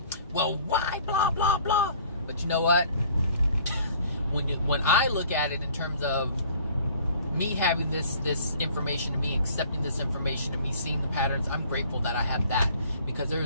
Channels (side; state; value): both; inverted; correlation -0.53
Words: well, why? Blah, blah, blah. But you know what? When I look at it in terms of me having this information, and me accepting this information, and me seeing the patterns, I'm grateful that I have that, because